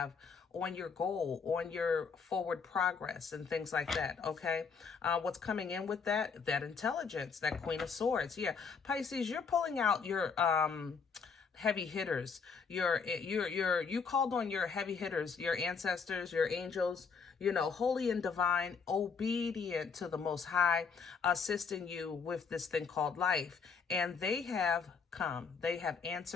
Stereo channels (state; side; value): quieter; right; 5.6 dB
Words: on your goal, on your forward progress and things like that. Okay, what's coming in with that intelligence, that Queen of Swords. Yeah, Pisces, you're pulling out your heavy hitters. You called on your heavy hitters, your ancestors, your angels, you know, holy and divine, obedient to the Most High, assisting you with this thing called life. And they have come. They have